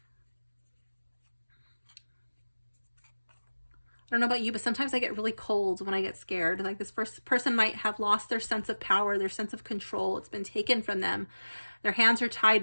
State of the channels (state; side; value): inverted; both; correlation -1.00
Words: I don't know about you, but sometimes I get really cold when I get scared. Like this first person might have lost their sense of power, their sense of control. It's been taken from them. Their hands are